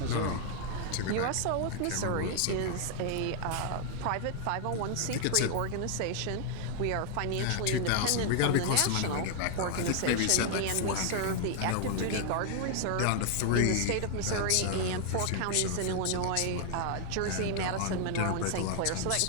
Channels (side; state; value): both; different; correlation 0.00